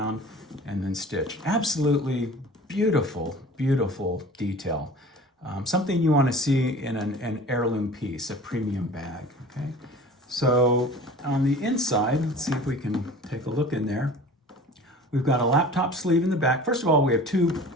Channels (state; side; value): normal; both; correlation 0.42